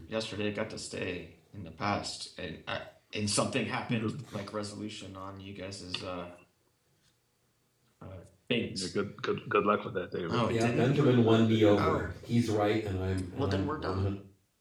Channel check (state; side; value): identical; both; correlation 1.00